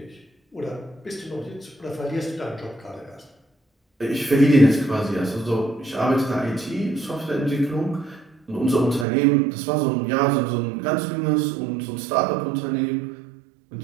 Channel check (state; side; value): drops out; left; at 9.1 s